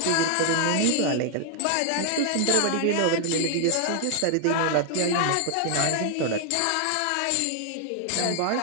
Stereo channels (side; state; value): both; different; correlation 0.00